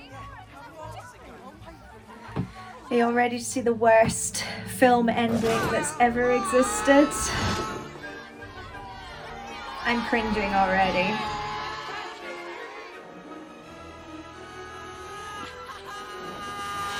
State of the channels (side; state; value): both; identical; correlation 1.00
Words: Are you all ready to see the worst film ending that's ever existed. I'm cringing already.